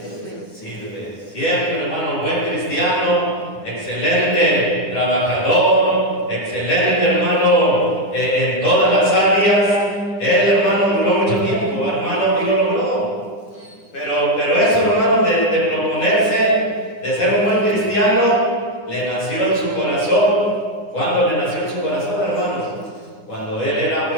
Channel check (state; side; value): late; right; 9.8 ms